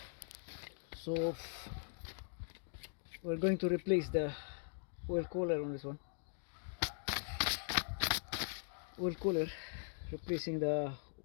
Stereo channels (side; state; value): right; silent; digital silence